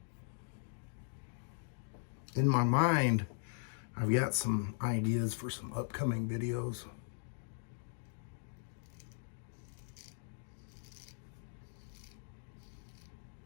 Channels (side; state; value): right; silent; digital silence